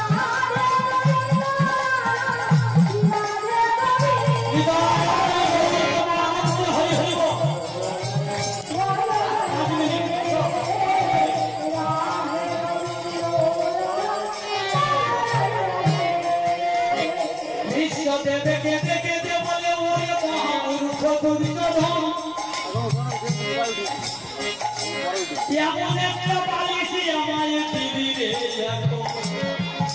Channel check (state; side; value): noise; right; rumble, 29 dB below the sound